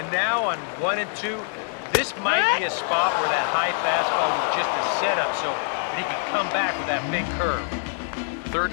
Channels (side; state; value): right; silent; 55 dB below the other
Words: now on 1-2, this might be a spot where that high fastball was just a setup so that he could come back with that big curve. Third